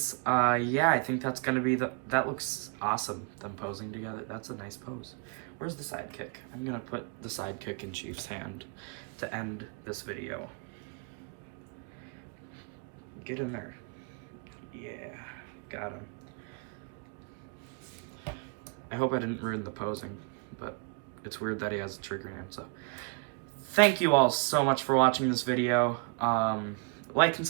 yeah, I think that's gonna be that looks awesome, them posing together. That's a nice pose. Where's the sidekick? I'm gonna put the sidekick in Chief's hand to end this video. Get in there. Yeah. Got him. I hope I didn't ruin the posing, but it's weird that he has a trigger hand, so. Thank you all so much for watching this video. Like and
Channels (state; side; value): quieter; left; 34.2 dB